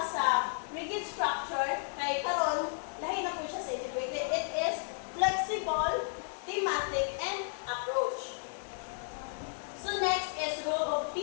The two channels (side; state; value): right; silent; digital silence